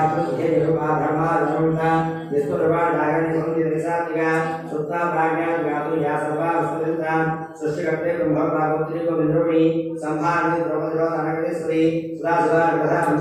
धर्माधर्मता निष्ठुरवाणागणि संधिनिसात्मिका सुप्ता प्राज्ञान व्याप्तिया सर्वा वस्तुनिता सृष्टिकर्ते ब्रह्मभागवत्री गोविन्दरूपिणी संभारणी द्रौपदीरोधनगणेश्वरी सुरासुरार्कथा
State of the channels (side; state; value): both; identical; correlation 1.00